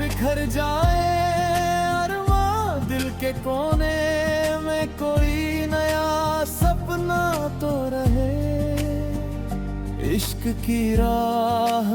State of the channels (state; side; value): identical; both; correlation 1.00